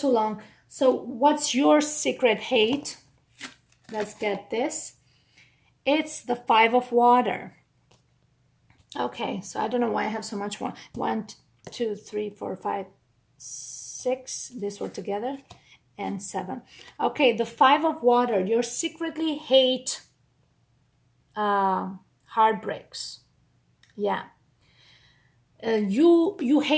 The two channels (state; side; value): identical; both; correlation 1.00